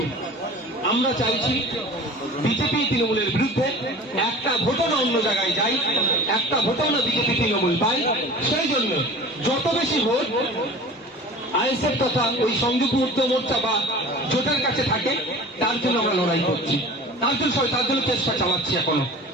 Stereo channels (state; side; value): normal; both; correlation 0.40